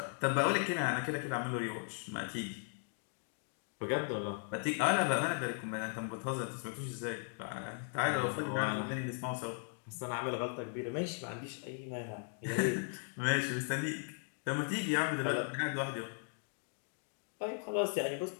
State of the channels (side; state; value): right; silent; 53 dB below the other